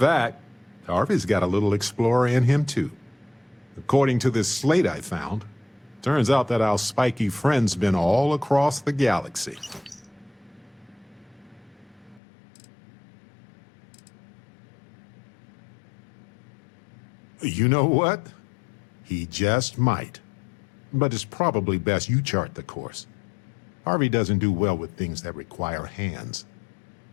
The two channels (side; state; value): right; drops out; at 12.2 s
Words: Harvey's got a little explorer in him too. According to this slate I found, turns out that our spiky friend's been all across the galaxy. You know what? He just might. But it's probably best you chart the course. Harvey doesn't do well with things that require hands.